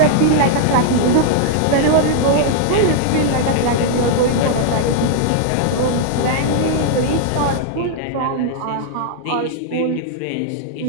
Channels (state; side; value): different; both; correlation -0.01